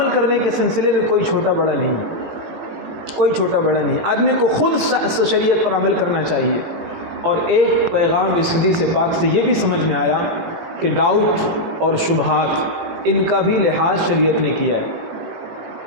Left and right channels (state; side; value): late; left; 18 ms